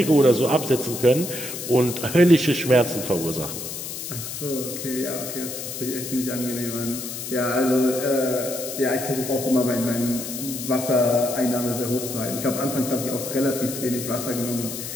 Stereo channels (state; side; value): noise; left; hiss, 7 dB below the sound